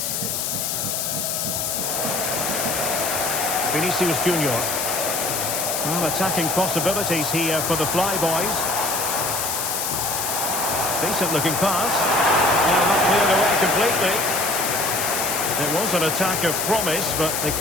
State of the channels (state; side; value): noise; left; hiss, 1 dB below the sound